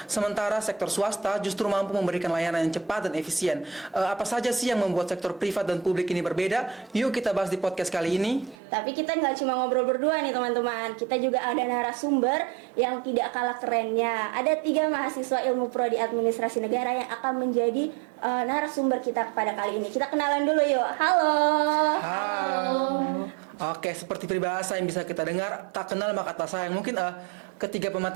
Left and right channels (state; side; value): drops out; left; at 8.6 s